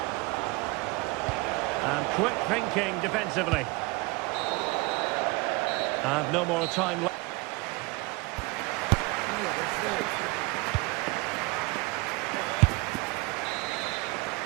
And quick thinking defensively. And no more time left.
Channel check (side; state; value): left; quieter; 24.8 dB